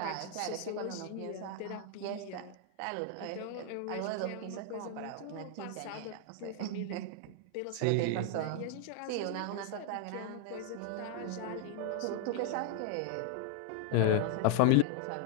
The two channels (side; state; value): both; different; correlation 0.00